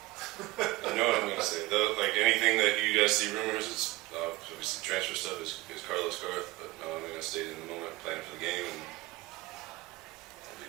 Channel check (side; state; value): left; quieter; 19.8 dB